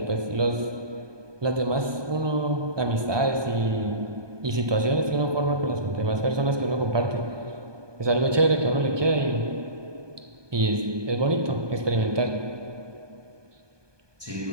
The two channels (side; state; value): left; late; 1.2 ms